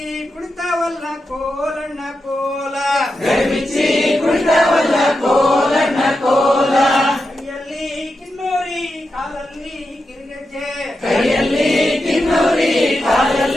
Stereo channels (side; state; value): both; normal; correlation 0.88